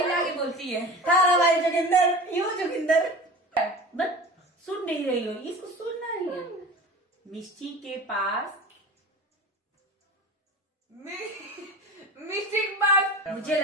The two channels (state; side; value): normal; both; correlation 0.35